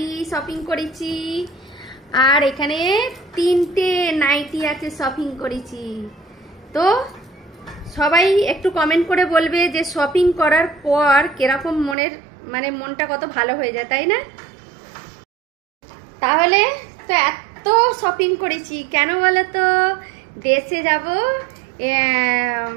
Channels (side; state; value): left; drops out; at 12.0 s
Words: শপিং করেছি, আর এখানে 3টে নাইটি আছে শপিং করেছি। তো সবাই একটু কমেন্ট করে বলবে যে শপিং করার পর কিরকম মনটা কত ভালো হয়ে যায়, তাই না? তাহলে তো এত শপিং করেছি কেন বলো তো? দেশে যাব,